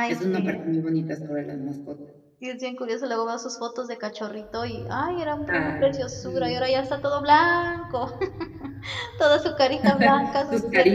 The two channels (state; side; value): identical; both; correlation 1.00